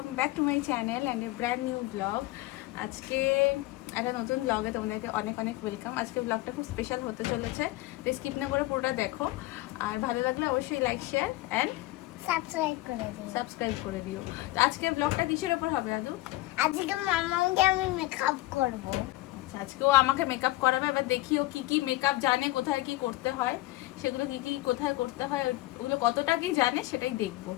back to my channel and a brand new blog. আজকে একটা নতুন ব্লগে তোমাদেরকে অনেক অনেক ওয়েলকাম। আজকে ব্লগটা খুব স্পেশাল হতে চলেছে, তো স্কিপ না করে পুরোটা দেখো। আর ভালো লাগলে অবশ্যই লাইক, শেয়ার অ্যান্ড সাবস্ক্রাইব করে দিও। তো আজকে ব্লগটা কিসের ওপর হবে দাদু? আজকে মামাকে আমি মেকআপ করব। আচ্ছা, আজকেও আমাকে মেকআপ করাবে। এবার দেখিও কি কি মেকআপ জানে, কোথায় কি করতে হয়, সেগুলো কি কি কোথায় করতে হয়, ওগুলো কতটা কি জানে সেটাই দেখবো।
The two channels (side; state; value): right; quieter; 18.4 dB